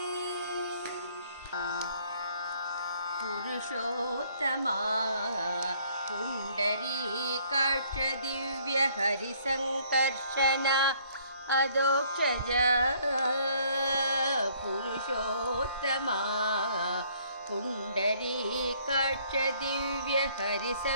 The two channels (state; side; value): inverted; both; correlation -0.62